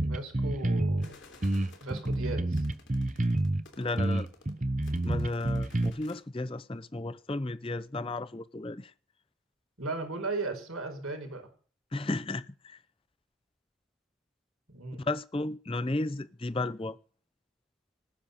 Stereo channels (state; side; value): normal; both; correlation 0.77